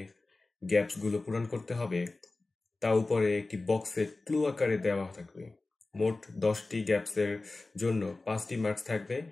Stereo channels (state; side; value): quieter; right; 3.3 dB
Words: গ্যাপসগুলো পূরণ করতে হবে তা উপরে একটি বক্সে ক্লু আকারে দেওয়া থাকবে। মোট 10টি গ্যাপসের জন্য 5টি মার্কস থাকবে।